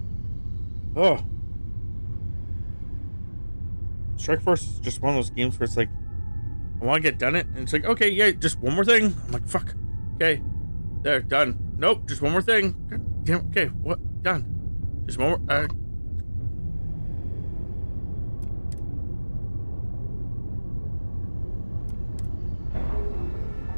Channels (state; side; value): inverted; both; correlation -1.00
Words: Oh. Strike Force is just one of those games where it's like, I want to get done it, and it's like, okay, yeah, just one more thing. I'm like, fuck. Okay. There, done. Nope, just one more thing. God damn, okay, what? Done. Just one more.